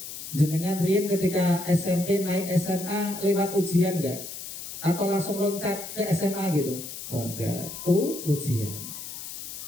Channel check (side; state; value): left; noise; hiss, 10 dB below the sound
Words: Jenengan riyen ketika SMP naik SMA lewat ujian enggak? Atau langsung loncat ke SMA gitu? Oh enggak. Ujian.